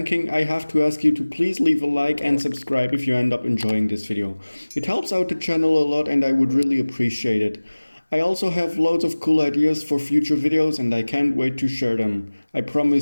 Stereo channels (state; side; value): inverted; both; correlation -1.00